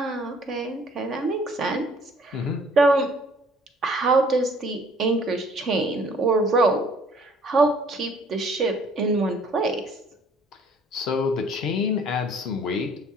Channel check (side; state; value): both; normal; correlation 0.57